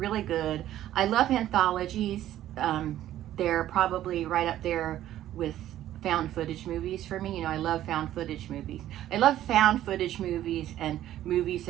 good. I love anthologies. They're probably right up there with found footage movies for me. You know, I love found footage movies. I love found footage movies and movies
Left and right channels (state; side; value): quieter; left; 12.8 dB